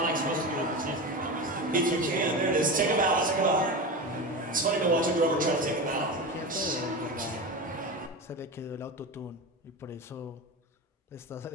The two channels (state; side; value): normal; both; correlation 0.24